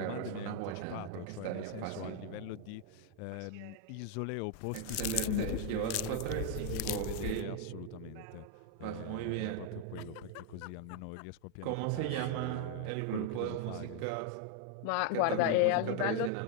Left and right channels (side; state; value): both; different; correlation 0.00